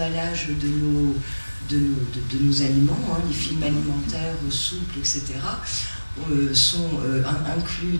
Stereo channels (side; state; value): both; inverted; correlation -1.00